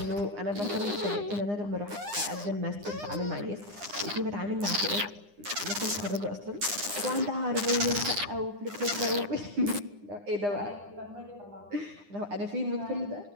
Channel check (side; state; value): left; late; 9.8 ms